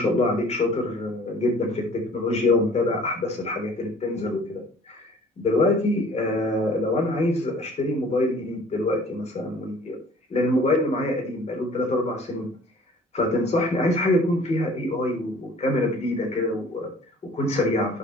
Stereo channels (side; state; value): both; normal; correlation 0.51